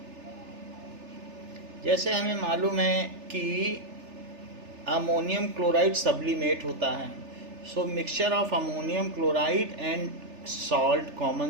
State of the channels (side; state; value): left; late; 3.4 ms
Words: जैसे हमें मालूम है कि ammonium chloride sublimate होता है, so mixture of ammonium chloride and salt,